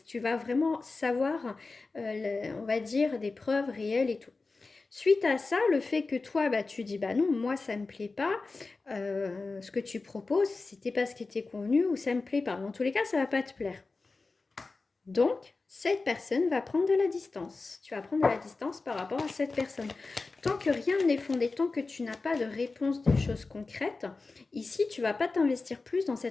tu vas vraiment savoir, on va dire, des preuves réelles et tout. Suite à ça, le fait que toi, bah, tu dis, bah non, moi, ça me plaît pas, ce que tu proposes, c'était pas ce qui était convenu ou ça me plaît pas. Dans tous les cas, ça va pas te plaire. Donc, cette personne va prendre de la distance. Tu vas prendre de la distance par rapport à cette personne. Tant que rien n'est fondé, tant que tu n'as pas de réponse des choses concrètes, ici, tu vas pas t'investir plus dans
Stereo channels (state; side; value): quieter; right; 3.8 dB